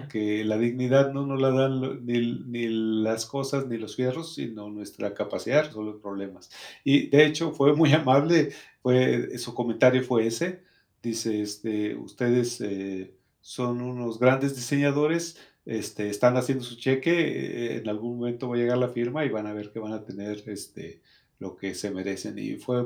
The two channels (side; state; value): both; identical; correlation 1.00